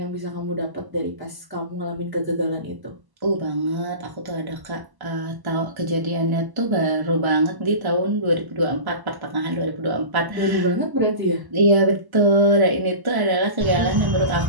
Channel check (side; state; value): left; late; 1.0 ms